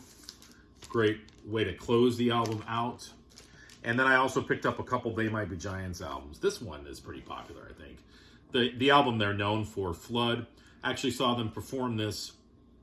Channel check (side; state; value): both; identical; correlation 1.00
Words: Great way to close the album out. And then I also picked up a couple They Might Be Giants albums. This one is pretty popular, I think. The album they're known for, Flood. Actually saw them perform this,